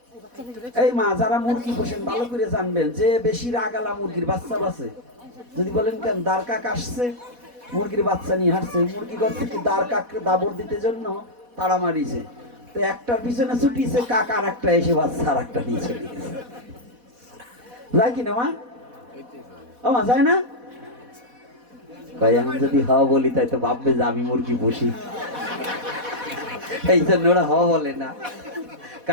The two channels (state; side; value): late; left; 4.1 ms